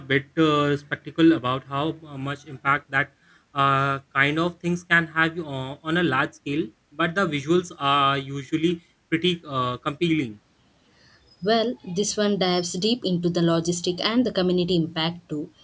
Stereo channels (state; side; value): identical; both; correlation 1.00